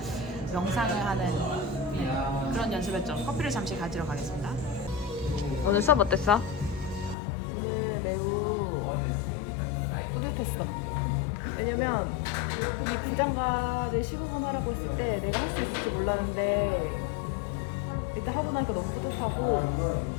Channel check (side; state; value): right; drops out; at 7.2 s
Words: 명상을 하는 그런 연습했죠. 커피를 잠시 가지러 가겠습니다. 오늘 수업 어땠어? 오늘 매우 뿌듯했어. 왜냐면 이 부장가를 15분 하라고 했을 때 내가 할 수 있을지 몰랐는데 일단 하고 나니까 너무 뿌듯하고,